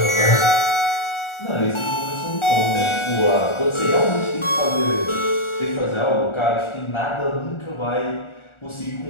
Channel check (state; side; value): late; right; 1.4 ms